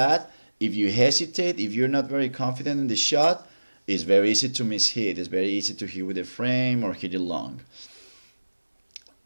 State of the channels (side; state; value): both; inverted; correlation -1.00